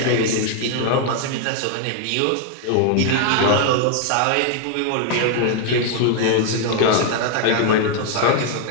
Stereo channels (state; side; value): different; both; correlation 0.00